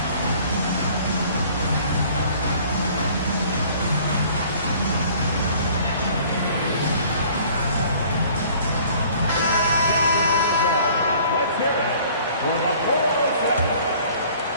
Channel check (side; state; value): both; inverted; correlation -0.53